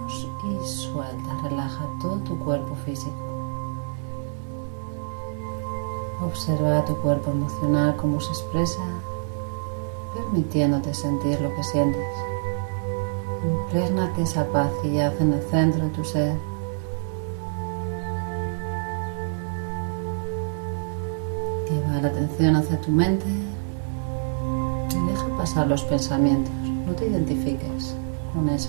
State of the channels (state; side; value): silent; left; digital silence